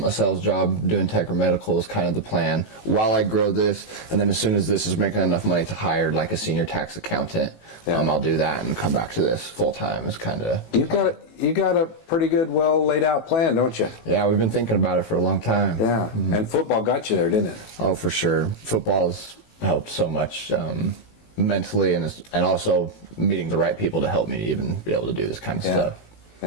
sales job doing tech or medical is kind of the plan while I grow this, and then as soon as this is making enough money to hire like a senior tax accountant, I'll do that and come back to this full time. Is kind of you got a pretty good, well laid out plan, don't you? Yeah, we've been thinking about it for a long time. Yeah, and football got you there, didn't it? Oh, for sure. Football has helped so much mentally, and also meeting the right people to help me even be able to do this kind of stuff.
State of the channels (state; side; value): late; right; 18 ms